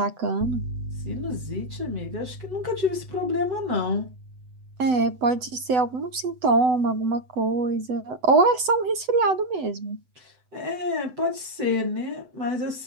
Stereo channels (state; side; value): late; left; 8.0 ms